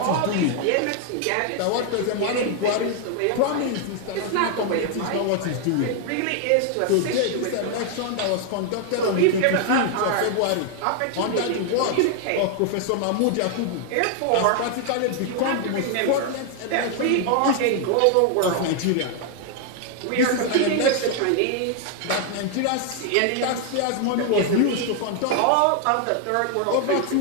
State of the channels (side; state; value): both; different; correlation 0.00